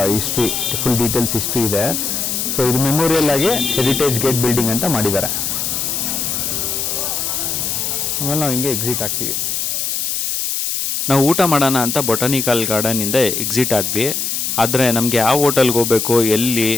ಹಿಸ್ಟ್ರಿ, ಫುಲ್ ಡೀಟೇಲ್ಸ್ ಹಿಸ್ಟ್ರಿ ಇದೆ. ಸೊ ಇದು ಮೆಮೋರಿಯಲ್ ಆಗಿ ಹೆರಿಟೇಜ್ ಗೇಟ್ ಬಿಲ್ಡಿಂಗ್ ಅಂತ ಮಾಡಿದ್ದಾರೆ. ಆಮೇಲೆ ನಾವು ಹಿಂಗೆ ಎಕ್ಸಿಟ್ ಆಗ್ತೀವಿ. ನಾವು ಊಟ ಮಾಡೋಣ ಅಂತ ಬೊಟಾನಿಕಲ್ ಗಾರ್ಡನಿಂದ ಎಕ್ಸಿಟ್ ಆದ್ವಿ. ಆದರೆ ನಮಗೆ ಯಾವ ಹೋಟೆಲ್ಗೆ ಹೋಗಬೇಕು, ಎಲ್ಲಿ,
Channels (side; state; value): left; noise; hiss, 1 dB below the sound